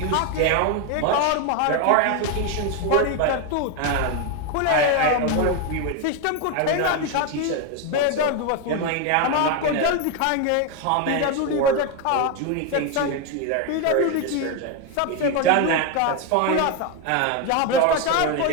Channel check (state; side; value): different; both; correlation 0.02